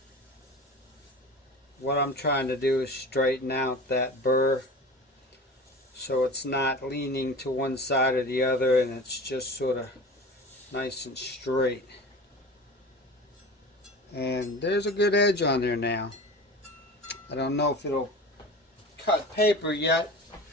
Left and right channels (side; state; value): both; normal; correlation 0.35